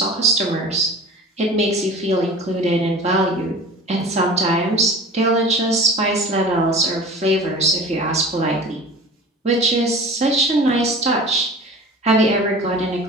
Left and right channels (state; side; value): normal; both; correlation 0.39